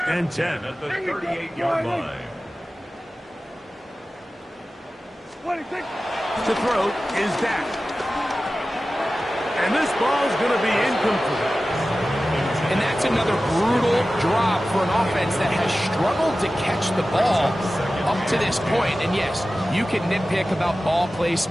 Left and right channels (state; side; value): normal; both; correlation 0.95